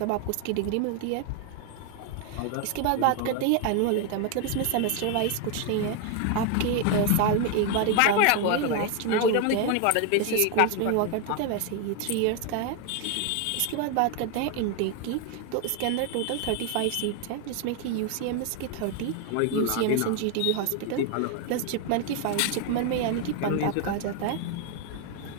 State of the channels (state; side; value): different; both; correlation 0.01